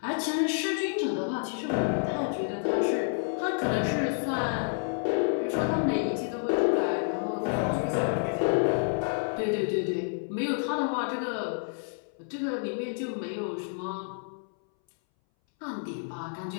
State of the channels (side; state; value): right; silent; 58 dB below the other